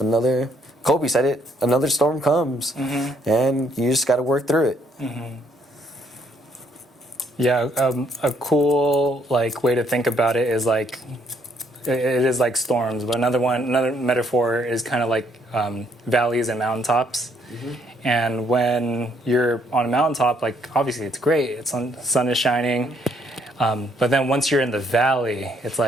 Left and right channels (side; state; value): both; normal; correlation 0.69